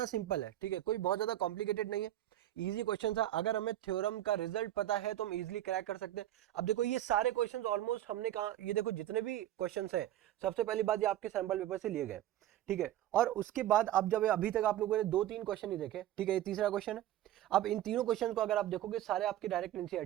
सिंपल है. ठीक है, कोई बहुत ज्यादा कॉम्प्लिकेटेड नहीं है, इजी क्वेश्चन था. अगर हमें थ्योरम का रिजल्ट पता है तो हम इजीली क्रैक कर सकते हैं. अब देखो ये सारे क्वेश्चंस ऑलमोस्ट हमने कहा, ये देखो जितने भी क्वेश्चंस हैं, सबसे पहली बात ये आपके सैंपल पेपर से लिए गए. ठीक है, और उसके बाद अब जब अभी तक आप लोगों ने 2-3 क्वेश्चन ही देखे, ठीक है, ये तीसरा क्वेश्चन है. अब इन तीनों क्वेश्चन को अगर आप देखोगे सारे आपके डायरेक्ट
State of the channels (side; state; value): left; quieter; 13.3 dB